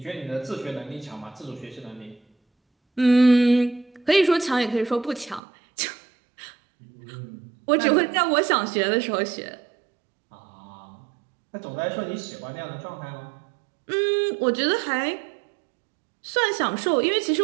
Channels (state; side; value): drops out; left; at 5.4 s